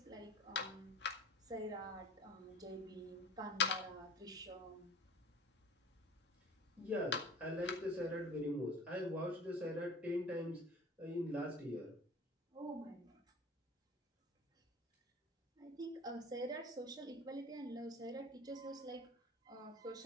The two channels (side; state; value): both; normal; correlation 0.41